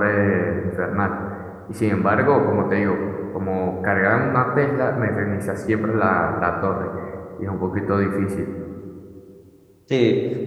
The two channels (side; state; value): both; identical; correlation 1.00